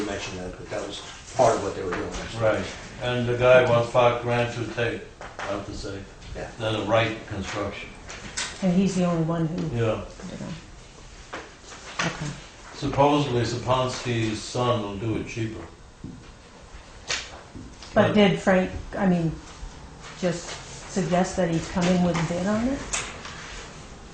mentioned that, but that was part of what they were doing. Right, and the guy wants $5,000 to take, I have to say, Yeah. than the right construction. And he's the only one who Yeah. put it on. Okay. Supposedly Saponski's son will do it cheaper. But did Frank, I mean, just suggest that he's coming with a bid on it?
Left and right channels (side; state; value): both; identical; correlation 1.00